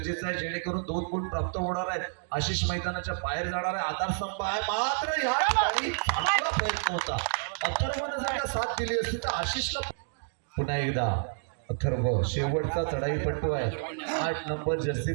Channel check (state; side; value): silent; left; digital silence